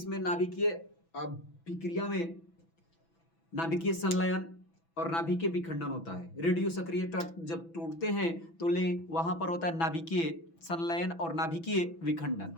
नाभिकीय अभिक्रिया में नाभिकीय संलयन और नाभिकीय विखंडन होता है। रेडियो सक्रिय तत्व जब टूटते हैं तो वहां पर होता है नाभिकीय संलयन और नाभिकीय विखंडन।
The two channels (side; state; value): right; late; 6.0 ms